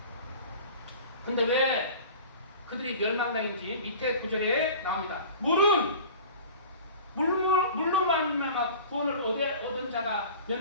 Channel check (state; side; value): inverted; both; correlation -0.40